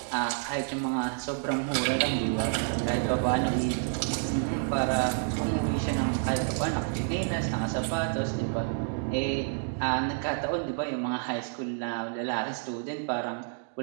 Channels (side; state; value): left; silent; digital silence